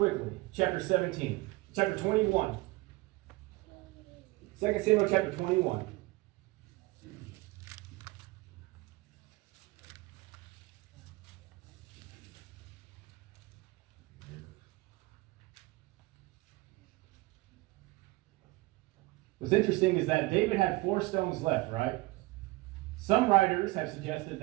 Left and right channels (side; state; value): left; quieter; 21.4 dB